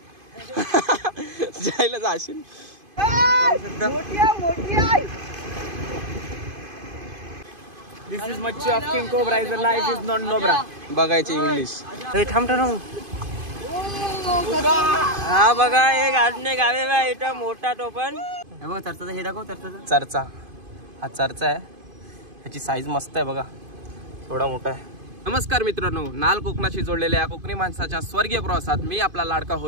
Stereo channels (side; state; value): left; late; 2.5 ms